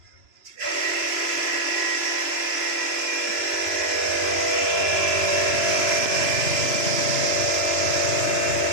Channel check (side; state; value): left; late; 3.0 ms